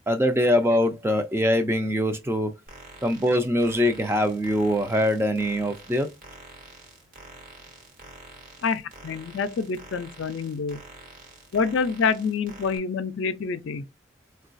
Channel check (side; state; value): both; normal; correlation 0.56